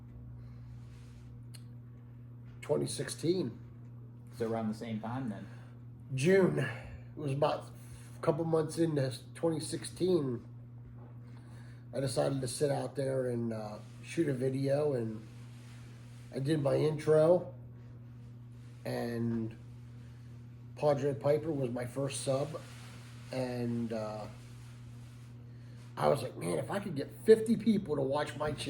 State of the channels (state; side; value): identical; both; correlation 1.00